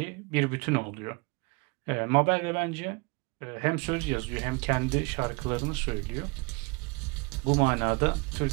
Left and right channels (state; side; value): quieter; left; 29.4 dB